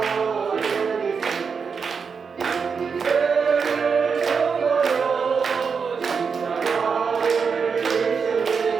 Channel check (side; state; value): left; quieter; 5.8 dB